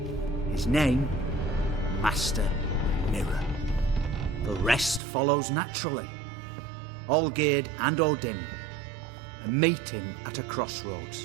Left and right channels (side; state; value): left; drops out; at 5.0 s